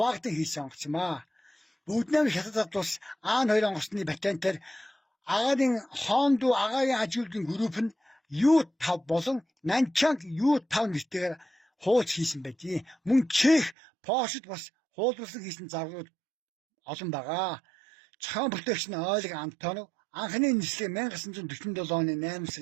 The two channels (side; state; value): left; drops out; at 13.8 s